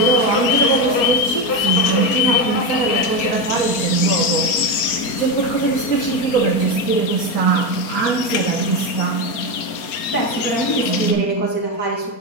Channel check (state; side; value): late; right; 4.3 ms